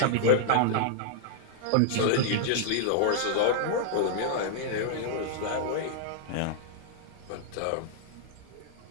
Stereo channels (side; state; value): both; different; correlation -0.01